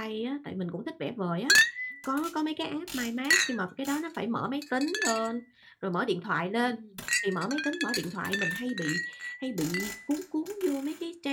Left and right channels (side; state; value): both; identical; correlation 1.00